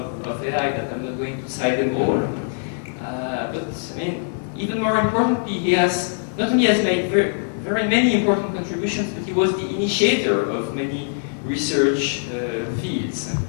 of AI that I'm not going to cite them all. But I mean, even more importantly, he has not only has made very many important contributions, but he was the initiator of many research fields.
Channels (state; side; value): silent; right; digital silence